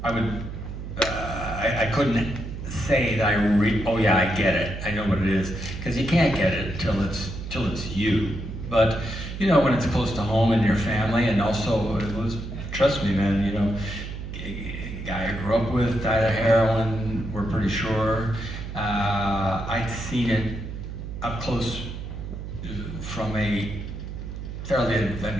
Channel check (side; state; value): right; noise; hum, 8 dB below the sound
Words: I couldn't say that oh yeah, I get it, I know what it is, because you can't get it till it's you. But, you know, when it's close to home and your family, and also, it was, trust me, man, you know, guy I grew up with died of heroin, we're pretty sure. I'd seen it up close from a fairly